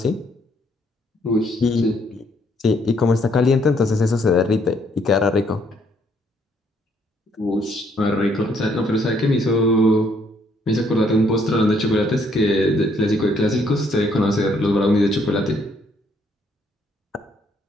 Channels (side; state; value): both; normal; correlation 0.69